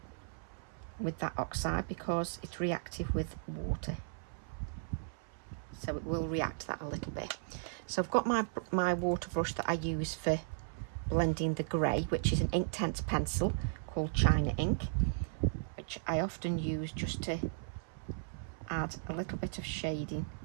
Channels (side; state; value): left; silent; 54 dB below the other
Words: with that oxide because it's reactive with water, so it will react that a little bit. So I've got my water brush that I use for blending the grey, which is an Inktense pencil called China Ink, which I often use just to add a little bit of shading